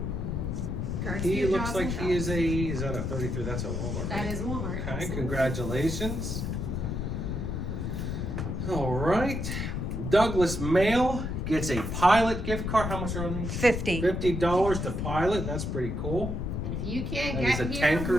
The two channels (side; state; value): left; noise; rumble, 2 dB below the sound